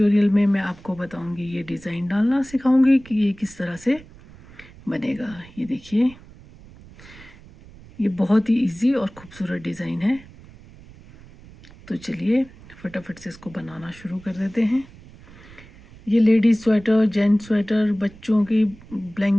में मैं आपको बताऊंगी, ये डिज़ाइन डालना सिखाऊंगी कि ये किस तरह से बनेगा। ये देखिए, ये बहुत ही इजी और खूबसूरत डिज़ाइन है। तो चलिए फटाफट से इसको बनाना शुरू कर देते हैं। ये लेडीज स्वेटर, जेंट्स स्वेटर, बच्चों की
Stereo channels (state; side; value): noise; right; rumble, 21 dB below the sound